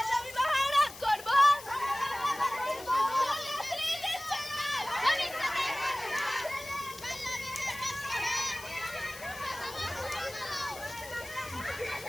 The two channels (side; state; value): left; noise; hiss, 15 dB below the sound